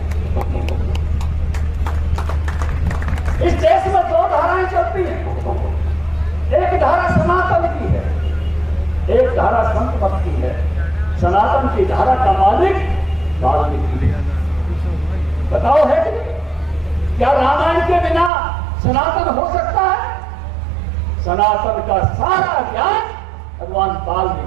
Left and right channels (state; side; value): drops out; left; at 18.3 s